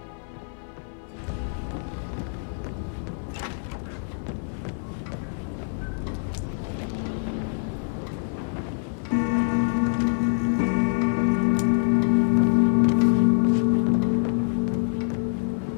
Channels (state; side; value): silent; right; 61 dB below the other